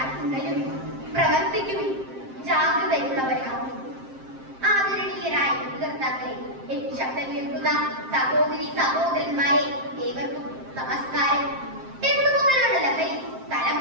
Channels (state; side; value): late; left; 7.6 ms